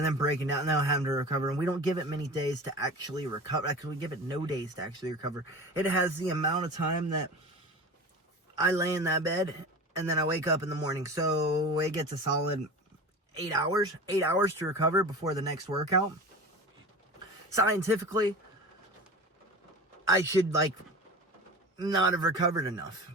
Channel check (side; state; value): both; normal; correlation 0.33